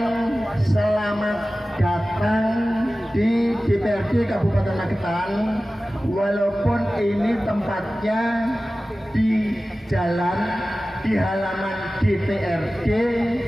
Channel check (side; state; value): both; normal; correlation 0.96